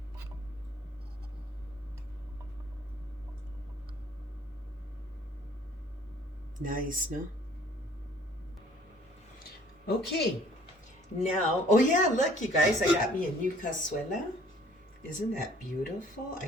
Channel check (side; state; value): both; normal; correlation 0.57